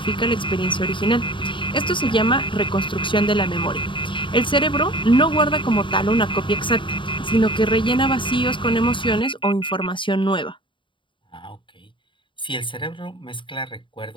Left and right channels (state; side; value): late; right; 0.24 ms